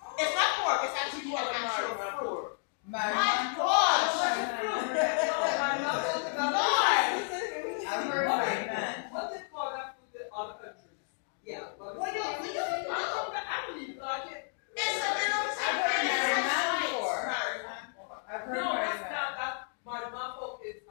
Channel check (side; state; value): right; silent; 56 dB below the other